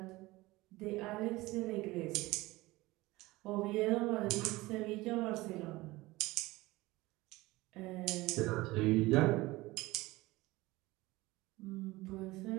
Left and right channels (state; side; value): quieter; left; 20.1 dB